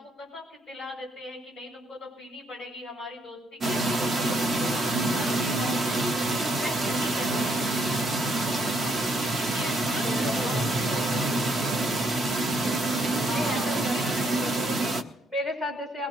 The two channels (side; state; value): both; normal; correlation 0.72